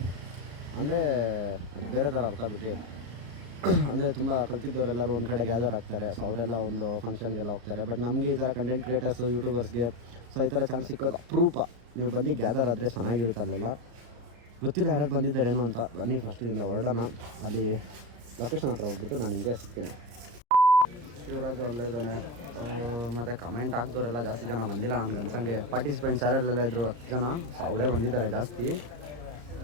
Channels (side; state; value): left; late; 34 ms